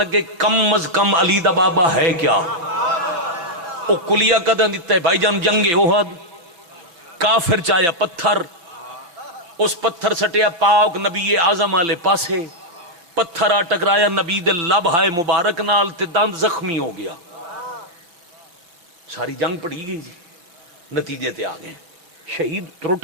کم از کم علی دا بابا ہے کیا. او کلیہ کداں دیتا ہے بھائی جان جنگ احد کافر چایا پتھر اس پتھر سٹیا پاک نبی اعظم والے پاسے پتھر آ ٹکرایا نبی دے لب ہائے مبارک نال تے دند زخمی ہو گیا. ساری جنگ پڑی گئی جی نتیجے تے آ گئے. شہید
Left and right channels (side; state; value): left; late; 5.9 ms